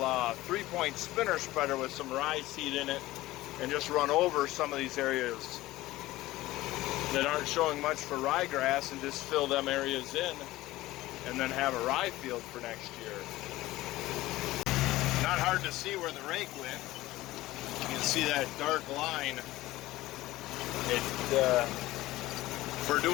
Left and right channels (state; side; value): quieter; right; 17.4 dB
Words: 3-point spinner spreader with some rye seed in it and just run over some of these areas that aren't showing much for ryegrass and just fill them areas in and then have a rye field for next year. Not hard to see where the rake went. You can see that dark line. For